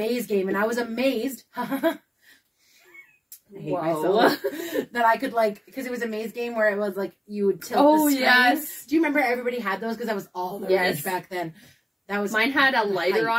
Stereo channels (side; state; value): both; identical; correlation 1.00